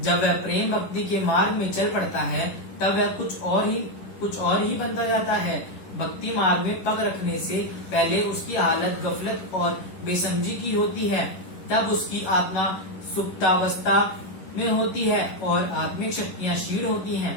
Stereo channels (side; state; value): right; late; 11 ms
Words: वह प्रेम भक्ति के मार्ग में चल पड़ता है तब वह कुछ और ही बनता जाता है। भक्ति मार्ग में पग रखने से पहले उसकी हालत गफलत और बेसमझी की होती है, तब उसकी आत्मा सुप्तावस्था में होती है और आत्मिक शक्तियां क्षीण होती हैं।